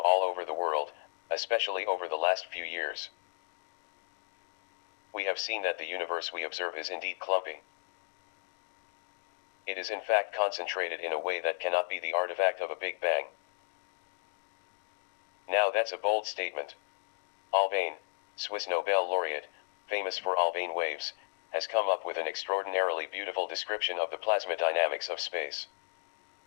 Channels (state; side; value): silent; right; digital silence